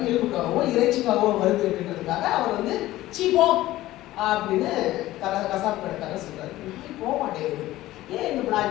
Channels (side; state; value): right; quieter; 16.1 dB